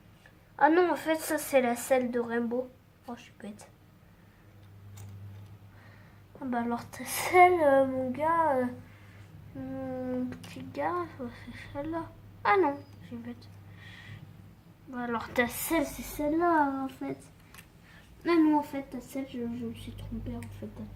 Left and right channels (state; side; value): identical; both; correlation 1.00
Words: Ah non, en fait, ça, c'est la selle de Rainbow. Oh, je suis bête. Ah bah alors, ta selle, mon gars, mon petit gars, c'est celle-là. Ah non, je suis bête. Bah alors, ta selle, c'est celle-là, en fait. Ah non, en fait, ta selle, je me suis trompée, en fait,